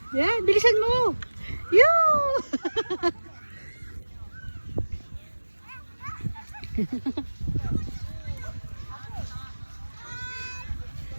Yan, bilisan mo. Yoo!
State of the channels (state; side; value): inverted; both; correlation -1.00